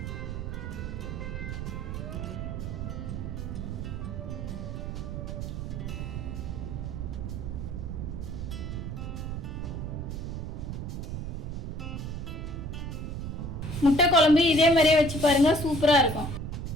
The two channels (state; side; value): noise; right; rumble, 5 dB below the sound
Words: முட்டை குழம்பு இதே மாதிரியே வச்சு பாருங்க, சூப்பரா இருக்கும்.